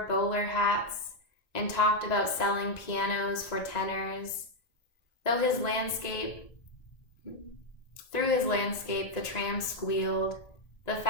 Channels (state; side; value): late; right; 1.9 ms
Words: bowler hats and talked about selling pianos for tenors. Through his landscape, the tram squealed. The